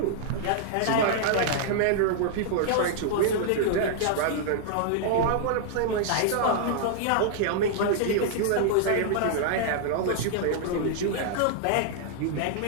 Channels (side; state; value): both; different; correlation -0.01